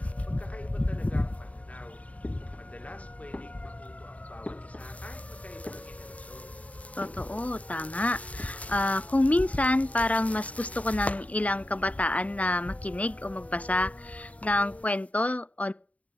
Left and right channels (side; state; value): right; late; 0.068 ms